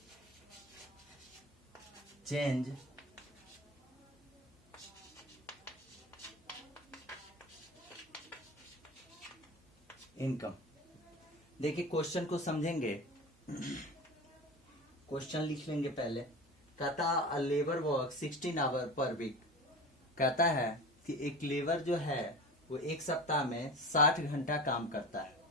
Change income. देखिए question को समझेंगे, question लिख लेंगे पहले। कहता a labour work 16 hour per week. कहता है कि एक लेबर जो है वो एक सप्ताह में 60 घंटा काम करता है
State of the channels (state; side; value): normal; both; correlation 0.32